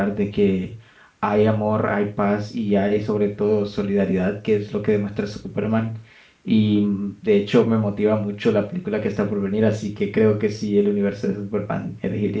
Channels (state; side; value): identical; both; correlation 1.00